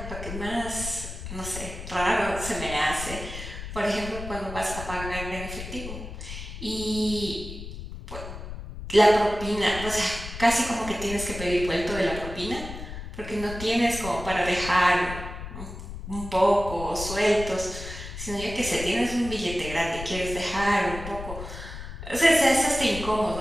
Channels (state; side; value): noise; left; rumble, 9 dB below the sound